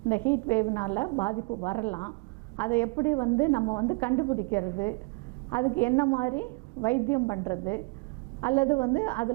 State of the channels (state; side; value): quieter; left; 30.0 dB